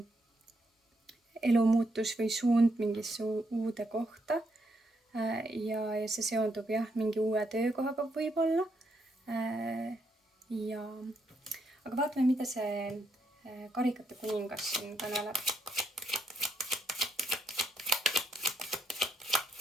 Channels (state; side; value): normal; both; correlation 0.77